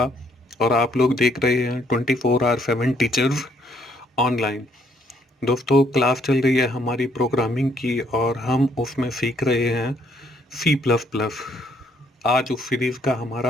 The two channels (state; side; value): normal; both; correlation 0.68